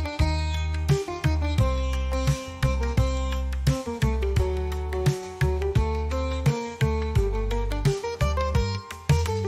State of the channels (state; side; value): identical; both; correlation 1.00